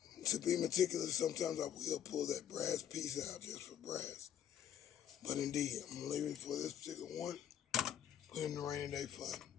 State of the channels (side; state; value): right; quieter; 9.7 dB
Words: To be meticulous, sometimes I will pull that brass piece out just for brass. But indeed, I'm going to leave it for this particular one. Put it in the rainy day fun.